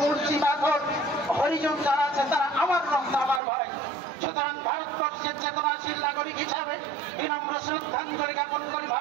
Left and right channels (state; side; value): drops out; left; at 3.4 s